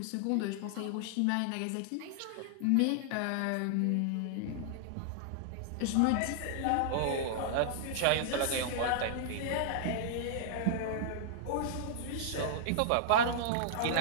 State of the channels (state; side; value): different; both; correlation -0.01